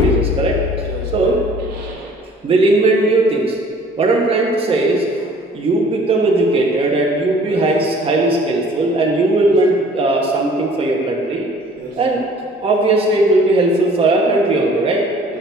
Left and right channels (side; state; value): both; normal; correlation 0.52